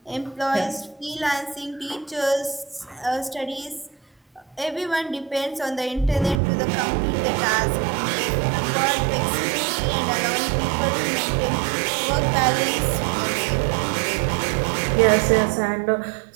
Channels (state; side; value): drops out; left; at 6.4 s